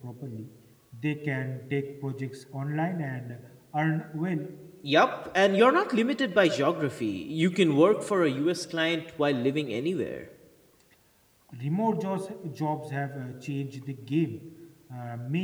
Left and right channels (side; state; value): both; identical; correlation 1.00